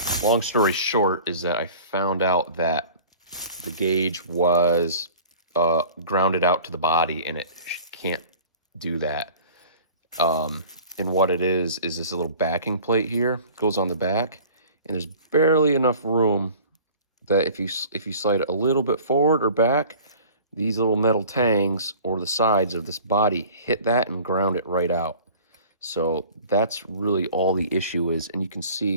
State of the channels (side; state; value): both; inverted; correlation -0.45